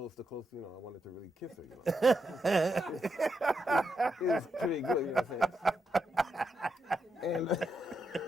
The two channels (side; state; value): both; normal; correlation 0.83